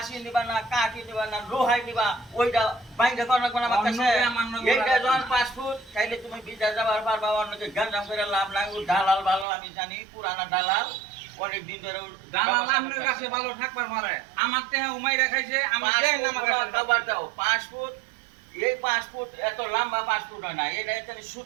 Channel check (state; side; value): drops out; left; at 9.5 s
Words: নিবা না কাঠি নিবা না লোহাই নিবা ওইটা বাইরে কোন কোন আমার কাছে এইটা যখন পাসপোর্ট তাইলে তুমি বিদেশ যাবার পারবা অন্যকে গাঞ্জাম করে লাভ নাই ও দালাল ভালো আমি জানি পুরানা দালাল অনেক দিন ধরে দালাল আপনার কাছে ভালো থাকবার পারে আমার তেহে উমাই রাখাইছে আমি দেই না আমার কাছে খাবার দাও পাসপোর্ট এই পাসপোর্ট এত লম্বা পাসপোর্ট হয় না এটা এখানে